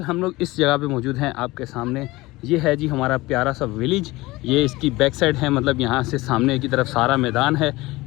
हम लोग इस जगह पे मौजूद हैं आपके सामने। ये है जी हमारा प्यारा सा विलेज। ये इसकी बैक साइड है, मतलब यहाँ से सामने की तरफ सारा मैदान है।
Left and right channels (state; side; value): quieter; right; 20.4 dB